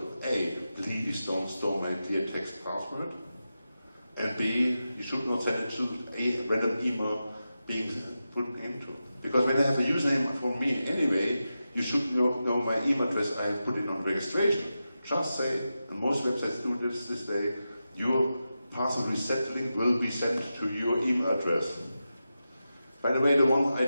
A, please don't store my clear text password. And B, you should not send it to a random email being put into. Because when I have a username from me anyway, you should know my email address I put in on registration. Just say, and most websites do this day, your password reset link will be sent to your email address. By the way, the one I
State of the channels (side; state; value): both; inverted; correlation -0.91